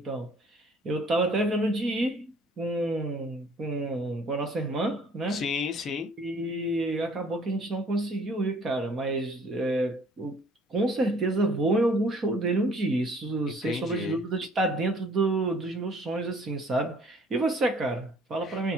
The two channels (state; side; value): normal; both; correlation 0.56